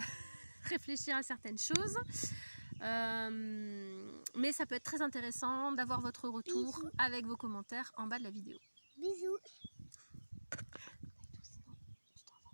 réfléchir à certaines choses. Mais ça peut être très intéressant d'avoir votre retour avec vos commentaires en bas de la vidéo. Bisous.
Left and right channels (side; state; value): both; inverted; correlation -1.00